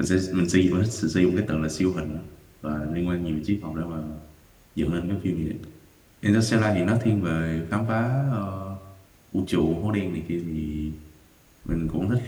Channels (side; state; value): both; identical; correlation 1.00